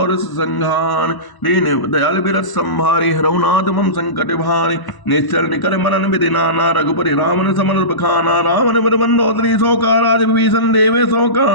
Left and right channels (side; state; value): right; late; 1.0 ms